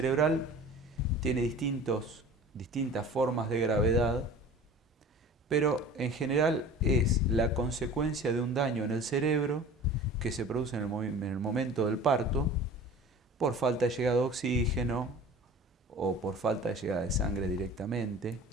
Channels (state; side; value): normal; both; correlation 0.41